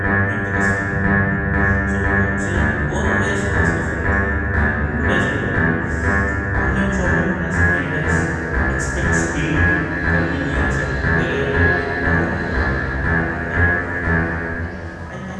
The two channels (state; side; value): identical; both; correlation 1.00